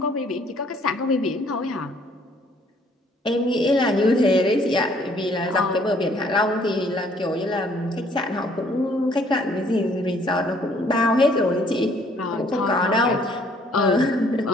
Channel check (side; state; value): both; normal; correlation 0.62